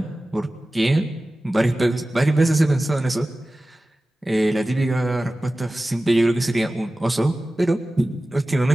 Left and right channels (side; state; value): both; normal; correlation 0.96